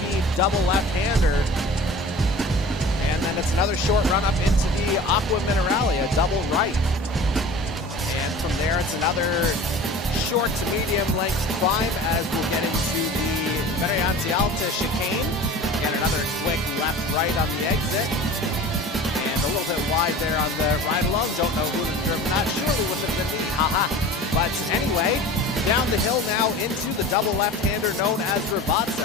double left-hander. And then it's another short run up into the Aqua Mineralia double right. And from there, it's another short to medium length climb as we'll get into the Variante Alta chicane. And another quick left-right on the exit. And a little bit wide there on the ride along. Don't know who would have driven that. Surely wouldn't have been me. Haha. But anyway, down the hill now into the double left-hander known as Ravazza.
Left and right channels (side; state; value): both; normal; correlation 0.39